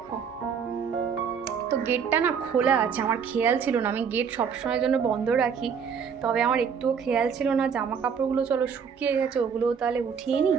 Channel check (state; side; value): quieter; left; 6.7 dB